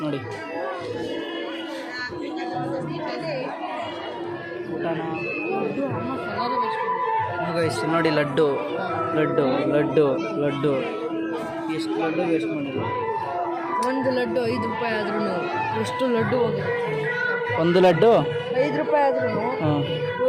ನೋಡಿ. ಊಟನ ಗೈಸ್ ನೋಡಿ, ಲಡ್ಡು ಲಡ್ಡು ಲಡ್ಡು ಲಡ್ಡು ಎಷ್ಟು ಲಡ್ಡು ವೇಸ್ಟ್ ಮಾಡಿದ್ರು. ಒಂದು ಲಡ್ಡು 5 ರೂಪಾಯಿ ಆದ್ರೂ ಎಷ್ಟು ಲಡ್ಡು ಹೋಗಿದೆ. ಒಂದು ಲಡ್ಡು 5 ರೂಪಾಯಿ ಆದ್ರೂ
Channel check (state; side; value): identical; both; correlation 1.00